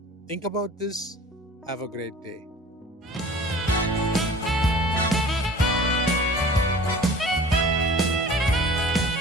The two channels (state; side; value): normal; both; correlation 0.44